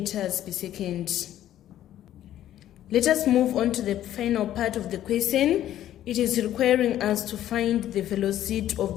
per second. Let us move on to the final part of the question. It is requiring us to find the velocity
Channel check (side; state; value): right; quieter; 12.3 dB